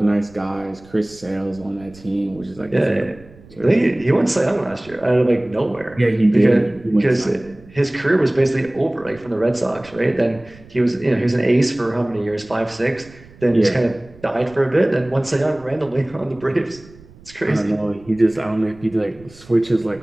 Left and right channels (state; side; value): noise; right; rumble, 23 dB below the sound